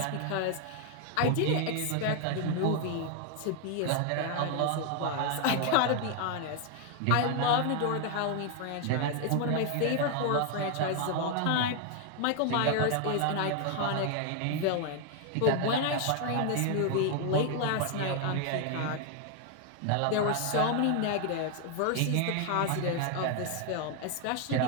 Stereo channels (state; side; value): different; both; correlation 0.00